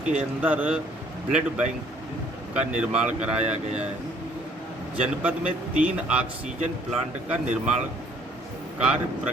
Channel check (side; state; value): both; normal; correlation 0.61